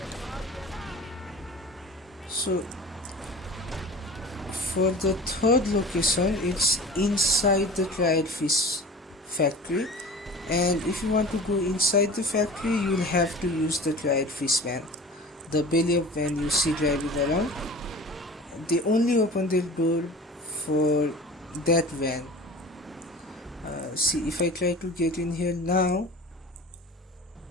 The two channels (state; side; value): normal; both; correlation 0.39